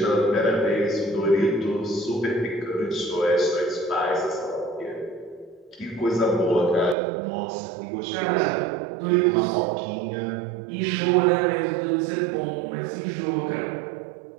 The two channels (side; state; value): left; drops out; at 7.0 s